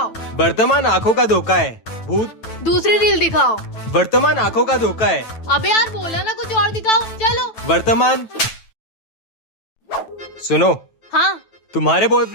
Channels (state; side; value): late; right; 9.1 ms